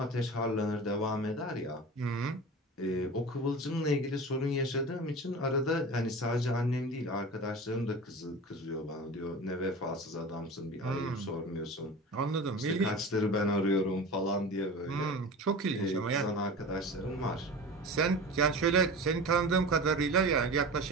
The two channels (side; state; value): both; normal; correlation 0.33